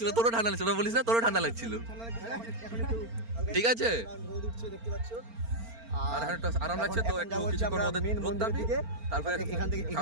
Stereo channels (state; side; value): late; left; 4.4 ms